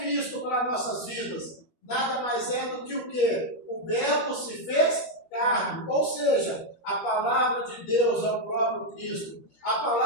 para nossas vidas? Nada mais é do que o quê? O Verbo se fez carne. Ou seja, a palavra de Deus é o próprio Cristo. A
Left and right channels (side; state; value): right; late; 13 ms